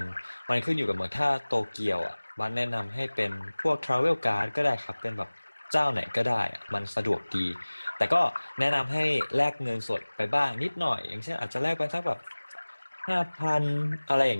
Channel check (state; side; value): inverted; both; correlation -1.00